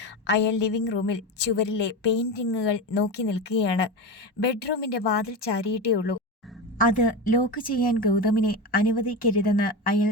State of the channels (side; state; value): both; normal; correlation 0.21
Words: അയാൾ ലിവിംഗ് റൂമിൽ ചുവരിലെ പെയിന്റിങ്ങുകൾ നോക്കി നിൽക്കുകയാണ്. ബെഡ്റൂമിന്റെ വാതിൽ ചാരിയിട്ടേ ഉള്ളൂ. അത് ലോക്ക് ചെയ്യാൻ ഗൗതമിനെ അനുവദിക്കരുതെന്ന് അയാൾ